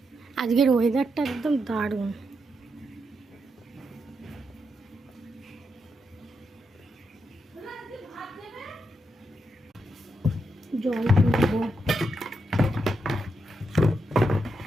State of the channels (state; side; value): normal; both; correlation 0.83